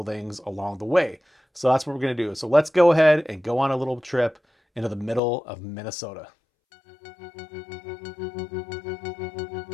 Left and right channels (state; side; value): drops out; right; at 5.2 s